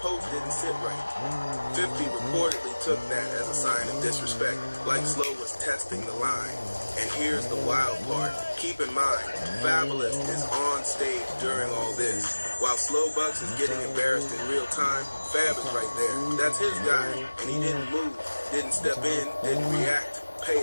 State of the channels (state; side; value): inverted; both; correlation -1.00